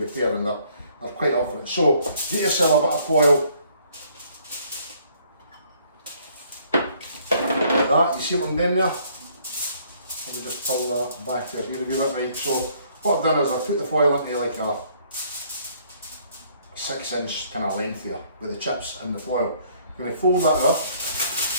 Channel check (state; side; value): inverted; both; correlation -0.63